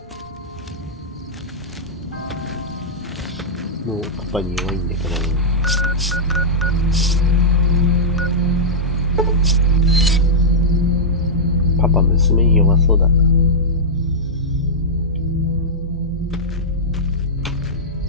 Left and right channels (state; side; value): normal; both; correlation -0.11